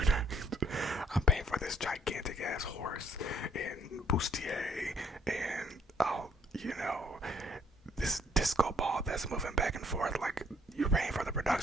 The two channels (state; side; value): normal; both; correlation 0.64